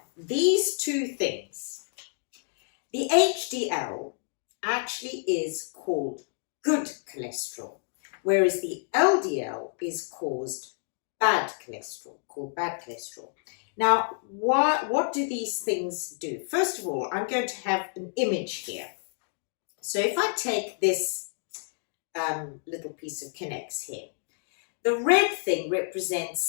These two things, the HDL actually is called good cholesterol, whereas the LDL is called bad cholesterol. Now, what do these things do? First of all, I'm going to have an image here. So if I take this little piece of K'Nex here, the red thing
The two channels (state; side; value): silent; right; 59 dB below the other